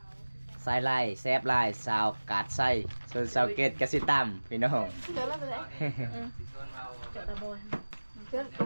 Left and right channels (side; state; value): both; inverted; correlation -1.00